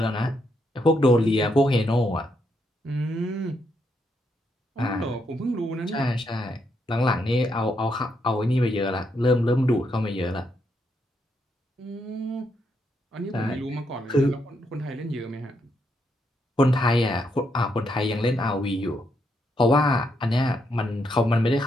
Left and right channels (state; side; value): normal; both; correlation 0.78